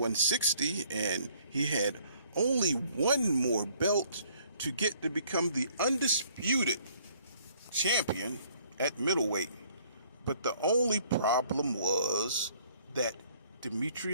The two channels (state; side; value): inverted; both; correlation -0.61